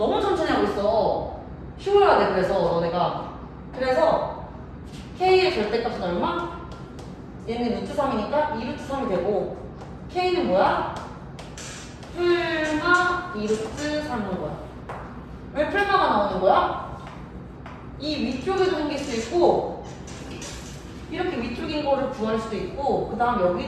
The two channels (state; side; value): identical; both; correlation 1.00